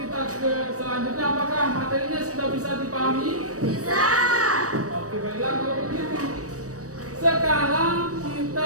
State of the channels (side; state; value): left; late; 0.66 ms